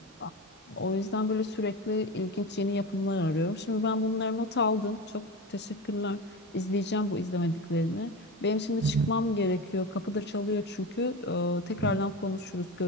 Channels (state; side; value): normal; both; correlation 0.24